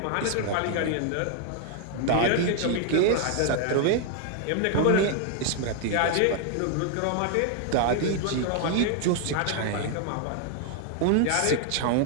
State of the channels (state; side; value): different; both; correlation 0.00